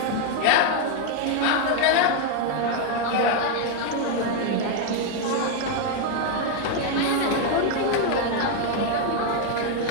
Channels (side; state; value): both; different; correlation 0.01